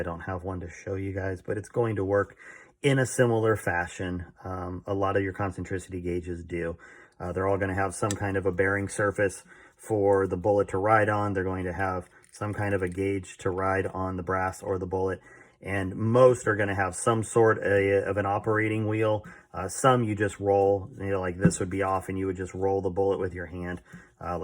don't have one to show you guys, but it's going to work in a similar fashion. A lot of your concentricity gauges do. They're all going to have some kind of a bearing surface for the bullet to ride on. They're going to have some kind of a gauge to ride on the brass or the bullet. And most are going to have some sort of an operating wheel. Some you just roll, you know, like this would be off and you would just roll the bullet with your hand,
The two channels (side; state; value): both; identical; correlation 1.00